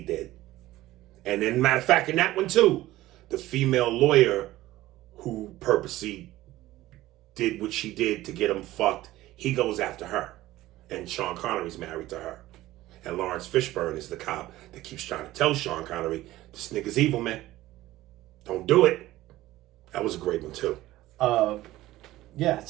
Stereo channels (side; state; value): left; quieter; 16.3 dB